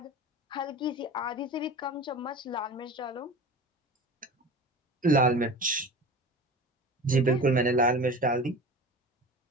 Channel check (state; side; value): normal; both; correlation 0.34